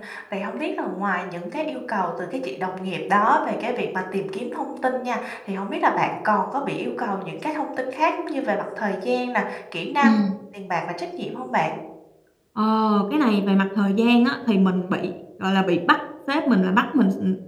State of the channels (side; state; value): both; identical; correlation 1.00